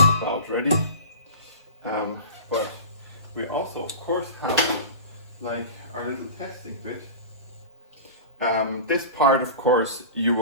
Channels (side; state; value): both; inverted; correlation -0.33